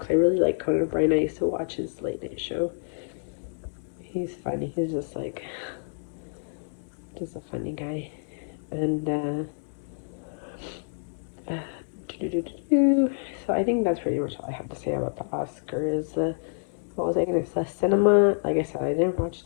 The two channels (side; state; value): right; silent; digital silence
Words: I really like Conan O'Brien. I used to watch his late night show. He's funny. He's just a funny guy. And so I think that's pretty much all I have to say about the Oscars. What was I gonna say? Cinema. Like I said, I didn't watch